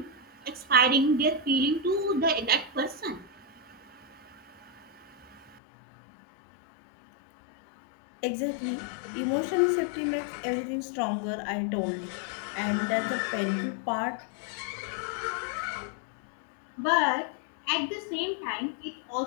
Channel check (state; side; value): drops out; right; at 5.6 s